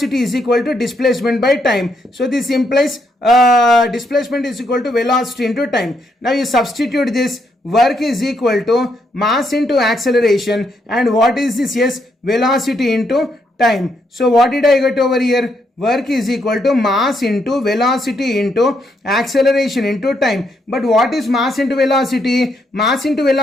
is equal to displacement by time. So this implies displacement is equal to velocity into time. Now you substitute this. Work is equal to mass into acceleration, and what is this? Yes, velocity into time. So what did I get over here? Work is equal to mass into velocity into acceleration into time. But what is mass into velocity? Mass into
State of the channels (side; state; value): both; normal; correlation 0.76